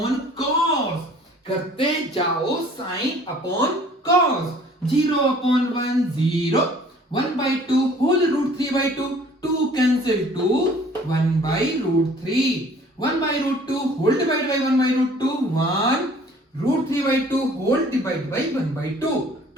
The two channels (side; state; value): both; normal; correlation 0.53